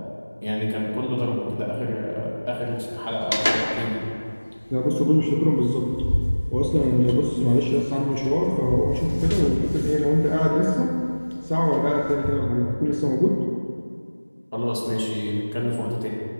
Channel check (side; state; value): both; inverted; correlation -1.00